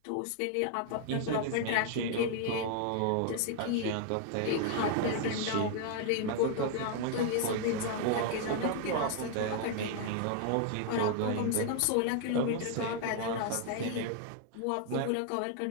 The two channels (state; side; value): different; both; correlation 0.00